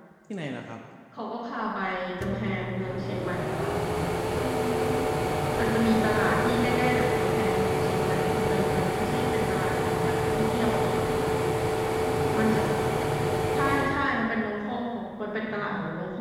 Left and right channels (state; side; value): identical; both; correlation 1.00